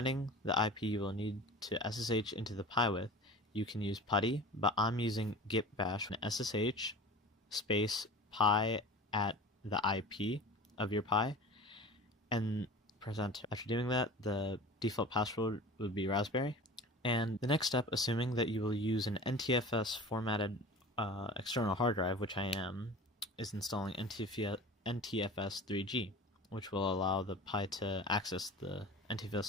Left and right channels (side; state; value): both; normal; correlation 0.37